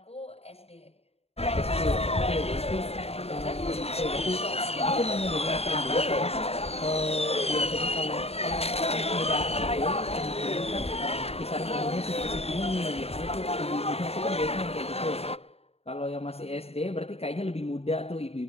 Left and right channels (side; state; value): right; late; 0.29 ms